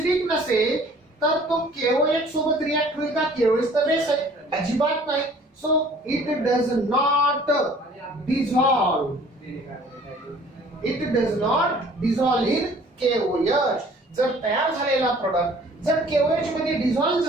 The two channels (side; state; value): both; normal; correlation 0.53